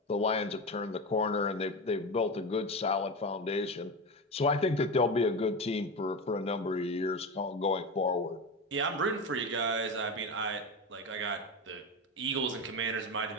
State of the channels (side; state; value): both; normal; correlation 0.21